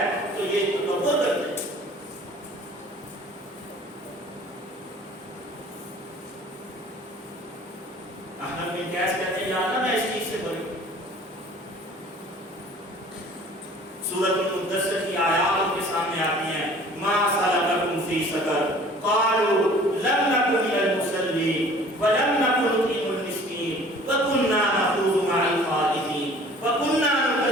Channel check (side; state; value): both; normal; correlation 0.49